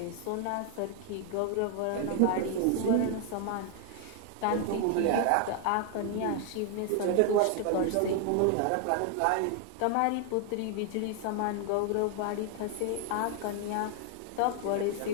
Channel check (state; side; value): different; both; correlation 0.00